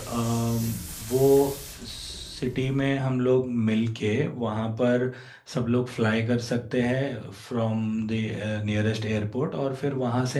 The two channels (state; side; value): identical; both; correlation 1.00